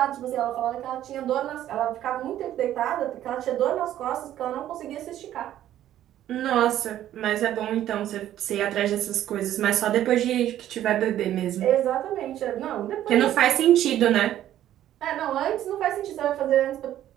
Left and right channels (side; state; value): left; quieter; 12.2 dB